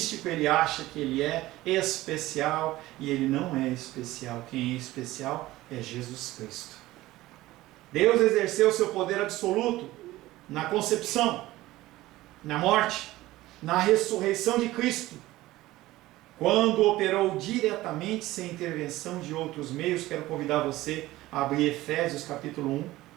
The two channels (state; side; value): quieter; left; 17.2 dB